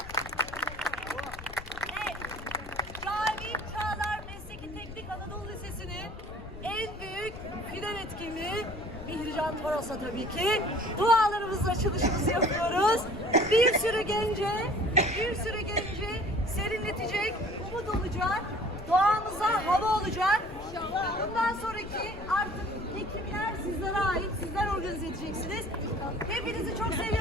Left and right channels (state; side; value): noise; left; rumble, 14 dB below the sound